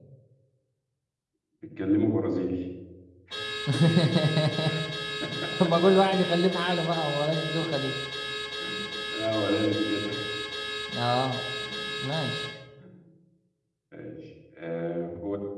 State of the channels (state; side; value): identical; both; correlation 1.00